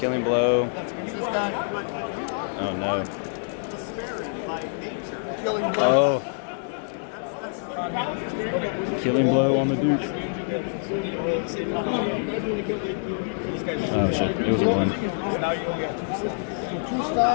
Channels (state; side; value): silent; right; digital silence